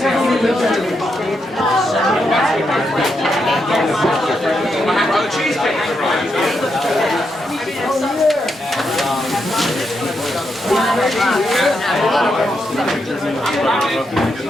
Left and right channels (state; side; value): normal; both; correlation 0.82